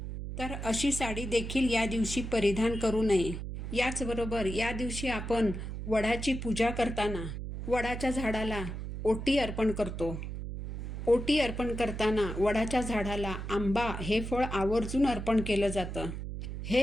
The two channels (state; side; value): noise; right; hum, 6 dB below the sound